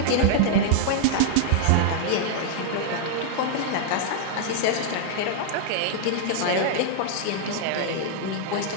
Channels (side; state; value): both; different; correlation -0.01